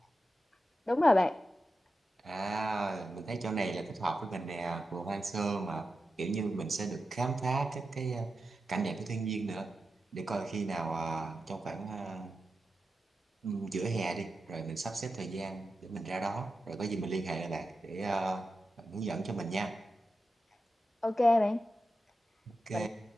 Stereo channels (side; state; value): both; normal; correlation 0.90